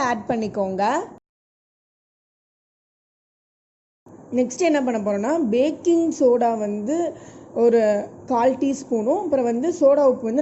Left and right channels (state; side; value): identical; both; correlation 1.00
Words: ஆட் பண்ணிக்கோங்க. நெக்ஸ்ட் என்ன பண்ண போகிறோன்னா பேக்கிங் சோடா ஒரு 1/4 டீஸ்பூனும் அப்புறம் சோடா உப்பு